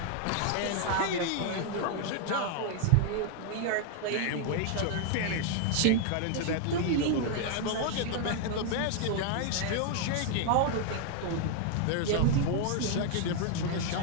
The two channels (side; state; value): both; different; correlation 0.00